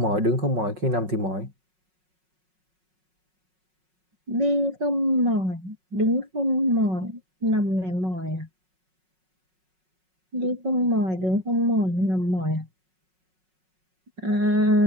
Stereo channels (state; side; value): late; left; 5.4 ms